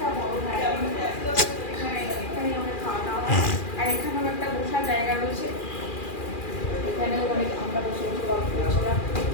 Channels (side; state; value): right; late; 2.4 ms